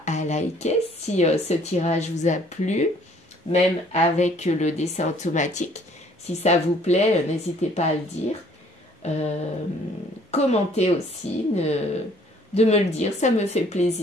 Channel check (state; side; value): normal; both; correlation 0.59